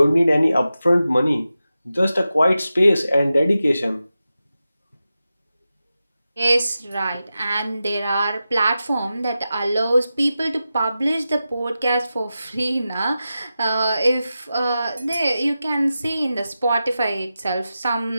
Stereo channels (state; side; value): inverted; both; correlation -0.92